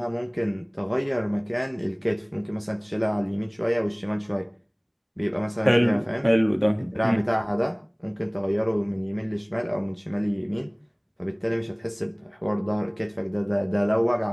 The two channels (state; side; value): identical; both; correlation 1.00